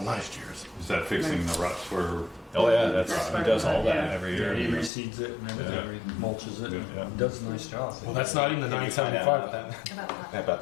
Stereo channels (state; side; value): drops out; right; at 4.9 s